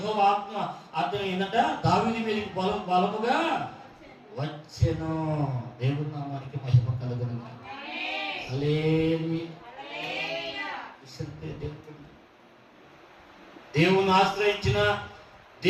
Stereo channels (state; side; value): identical; both; correlation 1.00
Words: ఆత్మ అతను దావీదు మీదకి బలముగా వచ్చెను. దేవుని నామానికి మహిమ కలుగును. హల్లెలూయా. దేవుని ఆశ్రయించిన